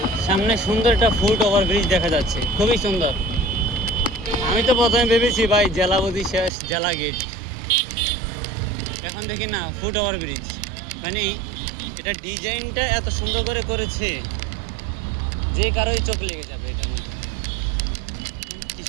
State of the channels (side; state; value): left; drops out; at 6.5 s